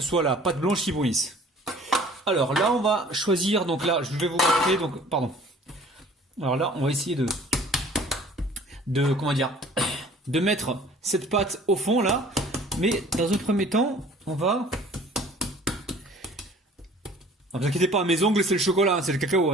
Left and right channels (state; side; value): normal; both; correlation 0.51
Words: soit la pâte blanche qui brunisse. Alors là, on va choisir, donc là, je vais vous montrer, donc, pardon. Alors là, on va essayer comment dire, de mettre cette pâte au fond là. Mais dans un premier temps, on va... Ne vous inquiétez pas, mes ongles c'est le chocolat, c'est le cacao.